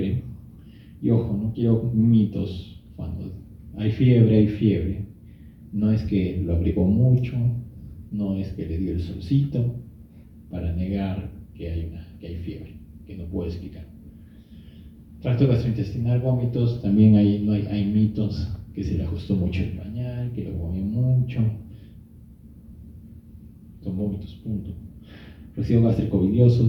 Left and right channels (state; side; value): identical; both; correlation 1.00